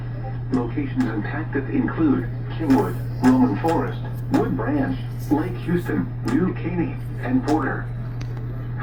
Locations impacted include Kingwood, Roman Forest, Wood Branch, Lake Houston, New Caney, and Porter.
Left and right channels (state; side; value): identical; both; correlation 1.00